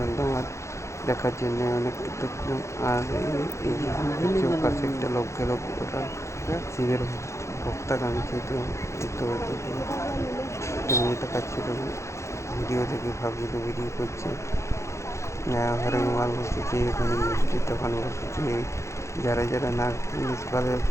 ধন্যবাদ দেখার জন্য, অনেক কৃতজ্ঞ। আর এই যে পাশে একটা লোক গেল, ওটা শিবের ভক্তা কামিয়েছে। তো এই তো একটা মেয়ে দেখাচ্ছিল ভিডিও থেকে, ভাবছিল ভিডিও করছে। ঘরে মাল বসেছে, ওখানে মিষ্টির দোকান বসেছে। যারা যারা না ভাবে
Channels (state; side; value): late; right; 0.14 ms